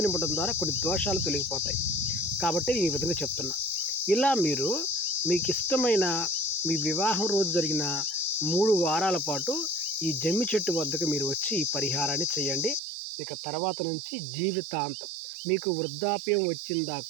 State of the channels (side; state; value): left; drops out; at 12.8 s